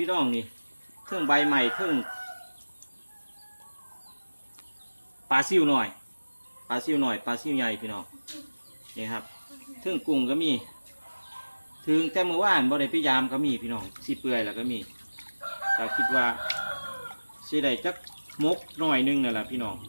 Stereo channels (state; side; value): inverted; both; correlation -1.00